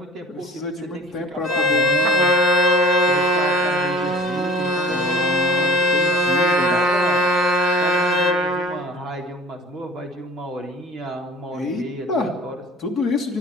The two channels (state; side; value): normal; both; correlation 0.44